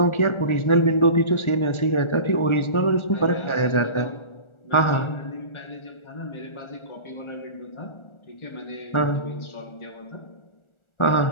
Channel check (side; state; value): right; late; 1.4 ms